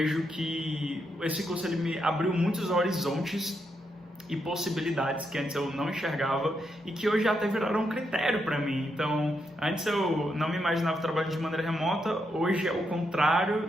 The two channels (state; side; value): normal; both; correlation 0.81